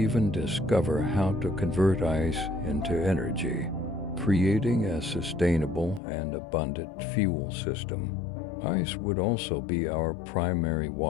discover how to convert ice into energy, creating a sustainable and abundant fuel system. Ice would also be our primary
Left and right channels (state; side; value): drops out; right; at 6.0 s